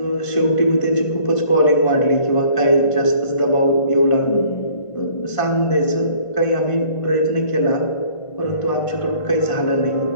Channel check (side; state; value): right; late; 1.5 ms